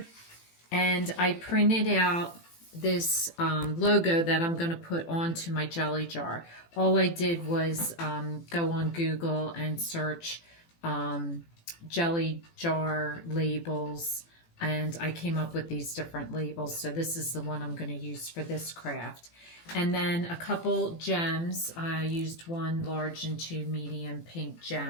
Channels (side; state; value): right; late; 18 ms